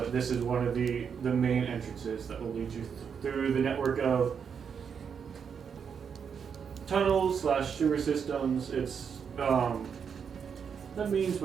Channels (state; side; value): quieter; left; 6.9 dB